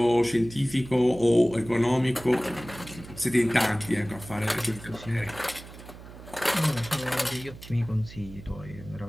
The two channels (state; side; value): noise; right; hum, 16 dB below the sound